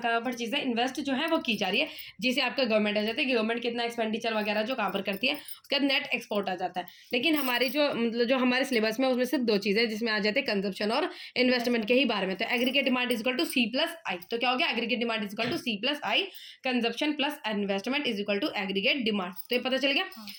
पर चीज़ें इन्वेस्ट जो है वो की जा रही है, जिसे आपका गवर्नमेंट आ जाता है कि गवर्नमेंट कितना एक्सपेंडिचर वगैरह जो कहाँ पर करती है। उसके बाद नेट एक्सपोर्ट आ जाता है। लेकिन हमारी जो मतलब जो हमारे सिलेबस में उसमें सिर्फ 2 चीज़ें जिसमें आ जाते हैं, कंजप्शन और इन्वेस्टमेंट के ही बारे में। तो aggregate demand is equal to C plus I. तो क्या हो गया, aggregate demand is equal to C plus I, consumption plus investment is equal to aggregate demand. तो ये पता चल गया।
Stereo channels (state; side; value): identical; both; correlation 1.00